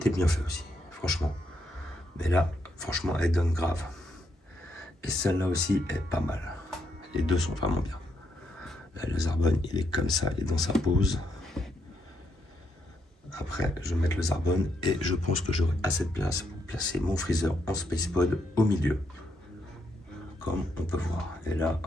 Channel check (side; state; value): both; normal; correlation 0.77